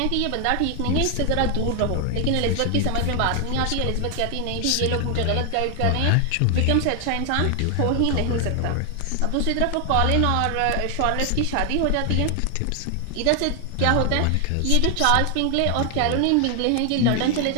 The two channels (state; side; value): different; both; correlation 0.00